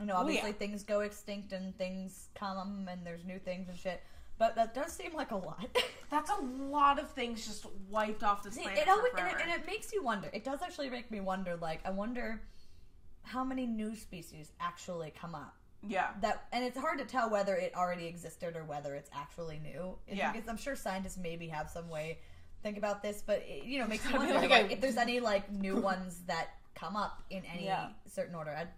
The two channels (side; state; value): both; identical; correlation 1.00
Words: I know, obviously, things go extinct and things come and there's new things and shit. But that does seem like a lot. That's a lot of things just wiped off this planet and it makes you wonder. It does actually make me wonder, like, I wonder how many new species actually come up. Yeah. And it's hard to tell whether it already existed or whether it's actually new. Because I'm sure scientists maybe have some way to think about this, but it makes me wonder if there's any, like, new ones that come up in any certain order. I'd